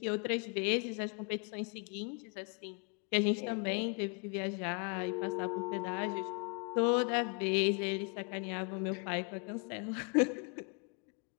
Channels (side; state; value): right; quieter; 34.5 dB